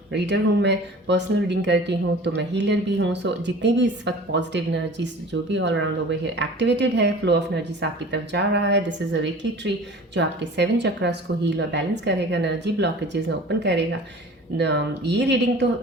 reader हूँ मैं, पर्सनल रीडिंग करती हूँ, तो मैं हीलर भी हूँ। सो जितनी भी इस वक्त पॉजिटिव एनर्जीज जो भी all around over here activated है, फ्लो ऑफ एनर्जीज आपकी तरफ जा रहा है, this is a reiki tree जो आपके 7 चक्रास को हील और बैलेंस करेगा, एनर्जी ब्लॉकेजेस में ओपन करेगा। ये रीडिंग तो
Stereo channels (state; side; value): normal; both; correlation 0.42